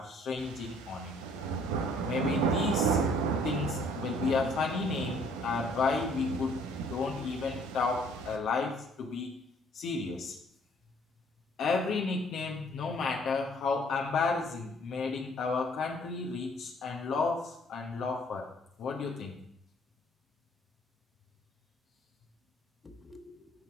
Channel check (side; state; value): both; normal; correlation 0.60